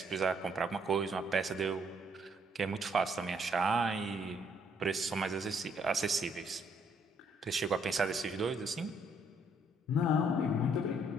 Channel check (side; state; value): both; normal; correlation 0.68